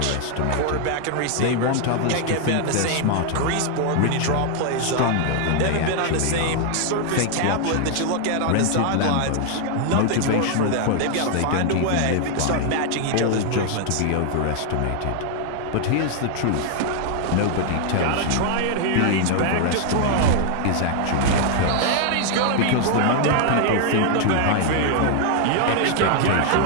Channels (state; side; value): different; both; correlation 0.00